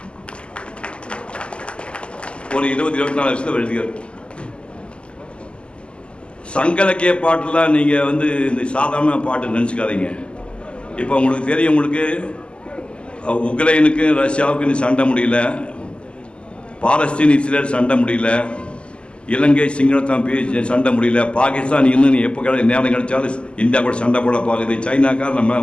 ஒரு 20-24 வருஷத்துல எழுதியார். சங்கலக்கிய பாட்டுலாம் நீங்கள் இந்த சாதாரண பாட்டு நினச்சிக்காதீங்க. இப்போ உங்களுக்கு தெரியும், உங்களுக்கு உக்ரைனுக்கு ரஷ்யாவுக்கு சண்டை முடியல, பாலஸ்தீன் இஸ்ரேல் சண்டை முடியல, இலங்கை சிங்களத்தான் சண்டை முடியல, பாகிஸ்தான் இன்னும் எப்போ நேரம் கிடைச்சாலும் இந்தியா கூட சண்டை போட பார்க்குது, சைனாக்கார் நம்ம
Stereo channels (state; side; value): late; right; 0.052 ms